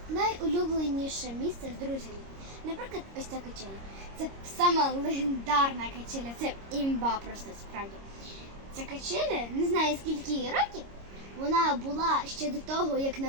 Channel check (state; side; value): late; left; 26 ms